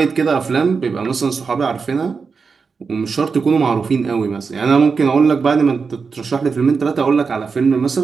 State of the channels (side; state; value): left; quieter; 5.1 dB